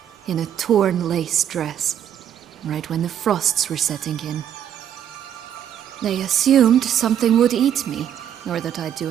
in a torn lace dress, right when the frosts were setting in. They assumed something would eat me, or that I'd do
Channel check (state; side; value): quieter; left; 9.8 dB